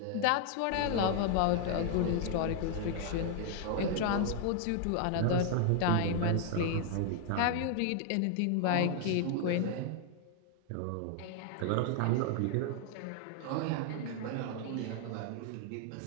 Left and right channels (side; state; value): both; different; correlation 0.00